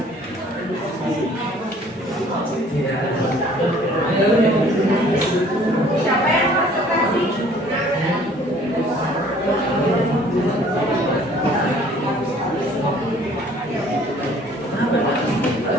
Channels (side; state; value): both; normal; correlation 0.55